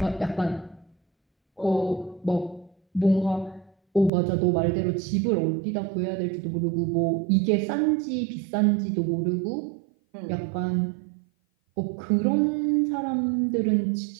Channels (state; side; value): drops out; left; at 4.1 s